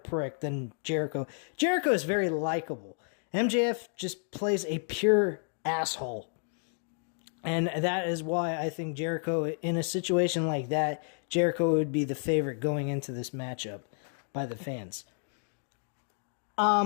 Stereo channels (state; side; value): silent; right; 57 dB below the other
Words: than Jericho. Jericho is very likable. MJF just plays a pure asshole. And that is why I think Jericho, in a situation like that, Jericho would be the favorite going into this matchup by the fans.